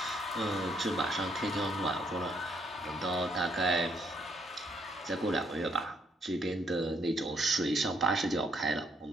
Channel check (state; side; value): normal; both; correlation 0.71